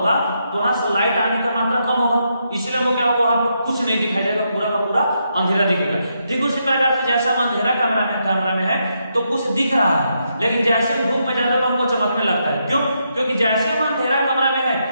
तो वहां से लाइट आने का मात्रा कम होगा, इसलिए वो क्या होगा, वहां पे कुछ नहीं दिखाई देगा, पूरा का पूरा अंधेरा दिखेगा। ठीक उसी प्रकार से जैसे हम अंधेरा कमरा में है तो कुछ दिख रहा है, लेकिन जैसे हम धूप में जाते हैं तो हमको चमकने लगता है। क्यों, क्योंकि जैसे हम अंधेरा कमरा में है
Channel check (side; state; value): both; inverted; correlation -0.80